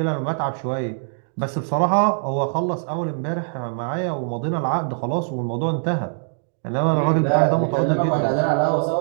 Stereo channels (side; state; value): left; silent; digital silence